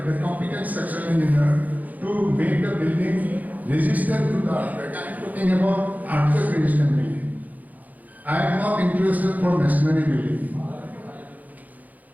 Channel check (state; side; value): late; left; 0.080 ms